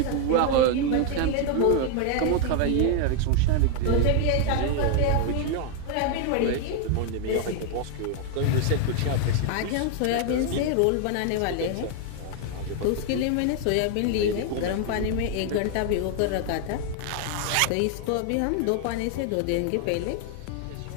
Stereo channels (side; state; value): both; different; correlation 0.00